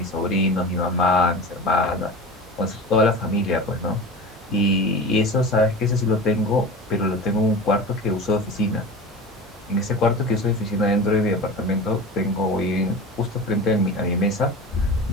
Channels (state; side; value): normal; both; correlation 0.32